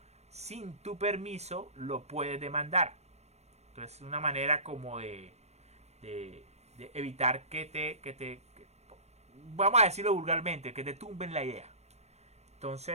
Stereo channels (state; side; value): late; left; 0.31 ms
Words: sin tu permiso, lo puedes demandar. Entonces, es una manera como de evitar que vamos a decirlo vulgarmente, que te tumben la idea.